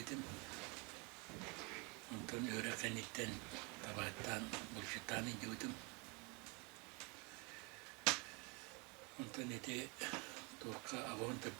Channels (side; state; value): left; quieter; 30.6 dB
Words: Ondan öğre kanitten tabattan buluştan indiyordum. Ondan ete torka avon